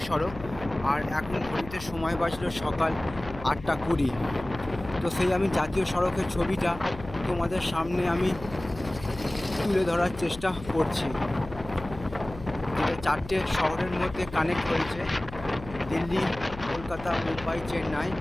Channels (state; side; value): noise; left; hum, 14 dB below the sound